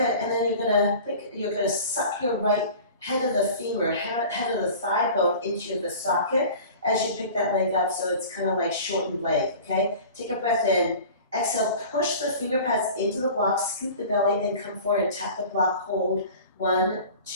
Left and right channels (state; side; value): inverted; both; correlation -0.40